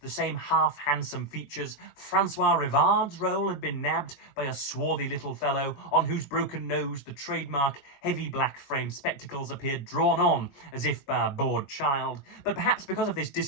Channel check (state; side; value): late; right; 22 ms